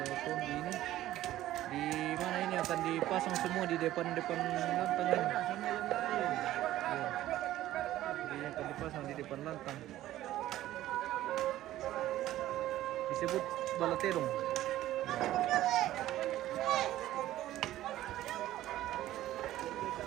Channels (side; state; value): left; quieter; 14.3 dB